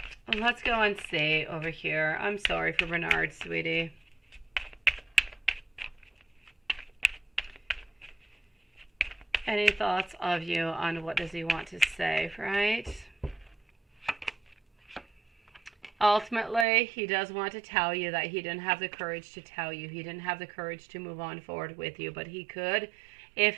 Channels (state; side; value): drops out; left; at 16.7 s